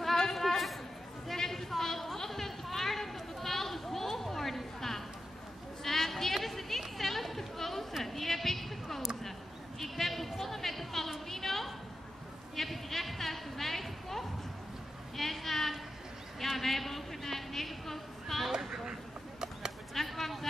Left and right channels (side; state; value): both; normal; correlation 0.89